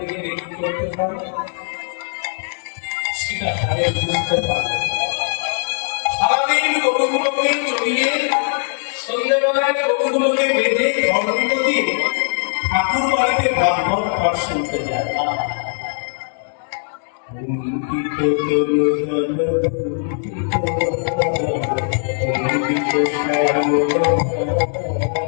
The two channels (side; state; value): right; silent; digital silence